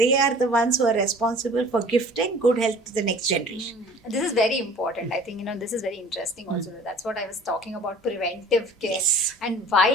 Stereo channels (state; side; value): normal; both; correlation 0.47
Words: are the ones who are responsible for gifting good health to the next generation. This is very important. I think, this is very interesting also. That's what I was talking about, preventive care. Yes. And why